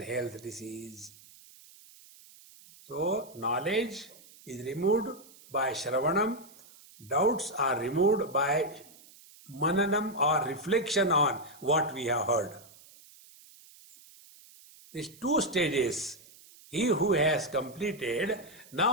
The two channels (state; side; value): noise; right; hiss, 23 dB below the sound